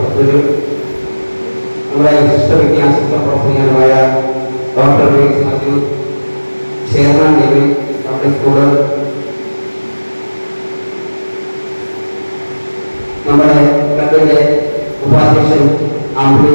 നമ്മുടെ വിശിഷ്ട വിദ്യാഭ്യാസ പ്രവർത്തകനായ ഡോക്ടർ മാത്യു, ചെയർമാൻ ദേവി പബ്ലിക് സ്കൂള്, നമ്മുടെ ക്ലബിന്റെ ഉപാധ്യക്ഷൻ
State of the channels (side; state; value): both; inverted; correlation -1.00